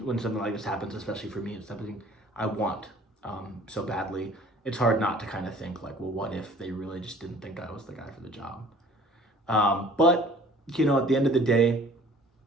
something like this happens, especially for me, it's something I want so badly. It's hard not to kind of think like, well, what if they really just didn't think I was the guy for the job? But at the end of the day,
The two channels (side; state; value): both; normal; correlation 0.50